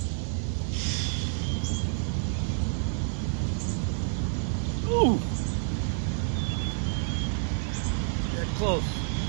Ooh. Get close.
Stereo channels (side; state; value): left; silent; 59 dB below the other